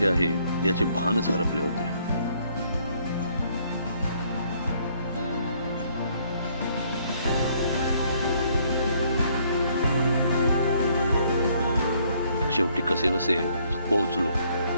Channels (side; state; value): both; inverted; correlation -0.66